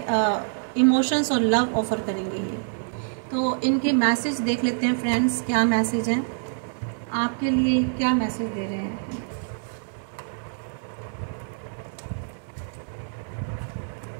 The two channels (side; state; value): left; silent; 61 dB below the other